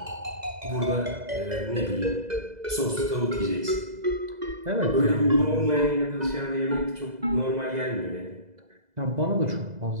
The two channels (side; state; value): left; late; 2.0 ms